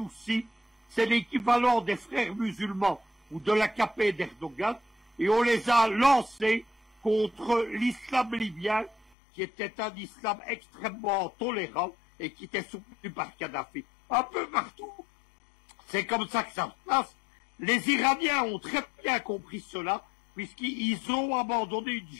C'est l'équivalent des frères musulmans ou de l'AKP d'Erdogan. Et on les a lancés contre l'islam libyen, qui était un islam extrêmement tolérant et qui était soutenu par Kadhafi. Un peu partout, c'est comme ça que ça se passe. Les Iraniens ont très bien compris cela, puisqu'ils ont abandonné une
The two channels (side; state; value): right; drops out; at 9.1 s